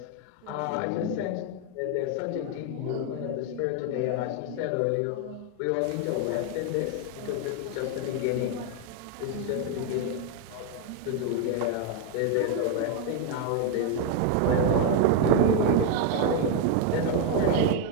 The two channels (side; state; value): both; different; correlation 0.01